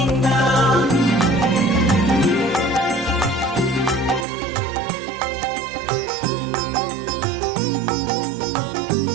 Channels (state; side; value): drops out; left; at 4.2 s